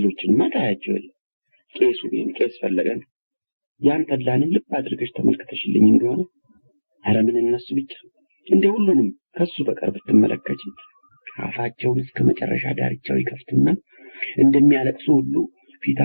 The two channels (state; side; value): inverted; both; correlation -1.00